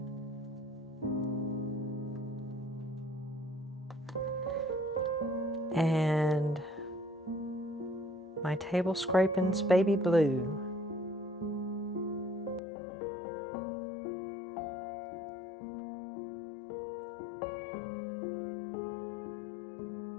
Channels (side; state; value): right; drops out; at 12.6 s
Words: and my table scrapings baby blue.